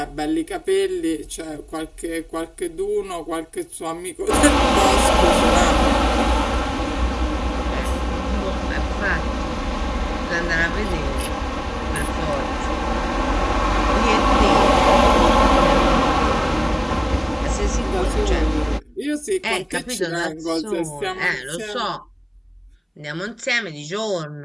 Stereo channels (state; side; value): identical; both; correlation 1.00